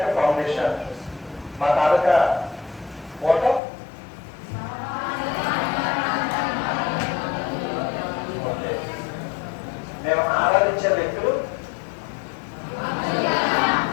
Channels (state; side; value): drops out; right; at 3.6 s